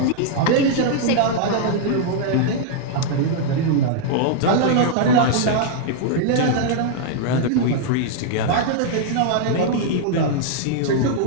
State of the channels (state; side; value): different; both; correlation -0.01